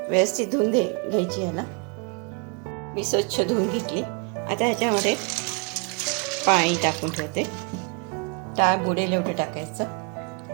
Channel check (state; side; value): quieter; left; 33.7 dB